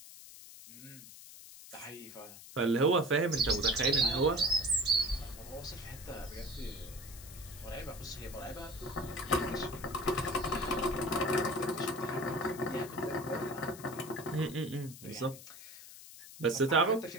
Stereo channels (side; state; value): left; noise; hiss, 16 dB below the sound